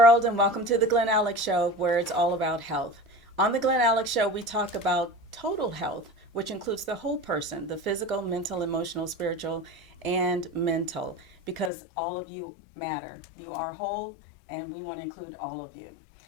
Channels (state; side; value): drops out; right; at 11.7 s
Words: and welcome to the Glen Alex Show, where it's all about health. On the Glen Alex Show, we talk about total health, which includes the whole person, the physical, mental, emotional, spiritual, and mental, because all of you matter. You are whole, and we want to include all of you.